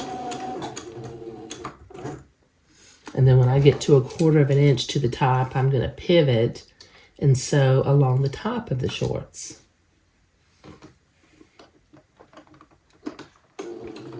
And then when I get to 1/4 of an inch to the top, I'm going to pivot and sew along the top of the shorts.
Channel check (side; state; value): both; identical; correlation 1.00